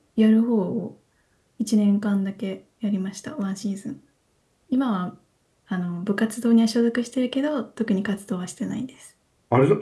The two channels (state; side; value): identical; both; correlation 1.00